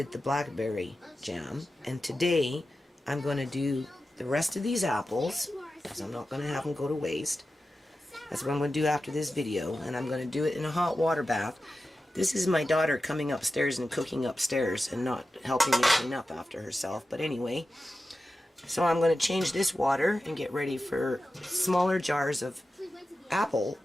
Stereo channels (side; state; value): both; normal; correlation 0.93